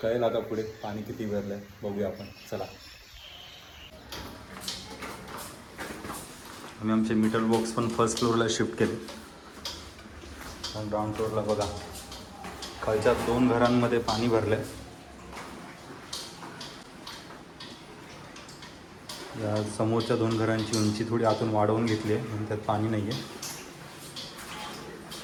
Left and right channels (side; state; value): both; identical; correlation 1.00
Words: कळेल आता पुढे पाणी किती भरलं आहे, बघूया आपण. चला. आम्ही आमचे मीटर बॉक्स पण फर्स्ट फ्लोअरला शिफ्ट केले आणि ग्राउंड फ्लोअरला बघा, खालच्या 2 घरांमध्ये पाणी भरलं आहे. या समोरच्या 2 घरांची उंची थोडी आतून वाढवून घेतली आहे आणि त्यात पाणी नाही आहे.